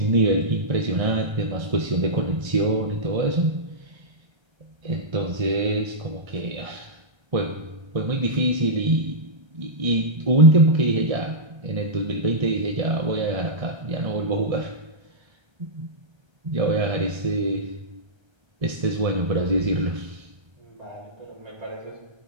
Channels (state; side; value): late; left; 1.3 ms